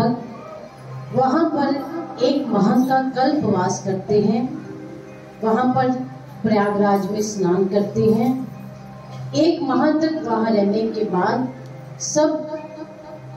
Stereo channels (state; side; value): identical; both; correlation 1.00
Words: वहां पर एक माह का कल्पवास करते हैं। वहां पर प्रयागराज में स्नान करते हैं। एक माह तक वहां रहने के बाद सब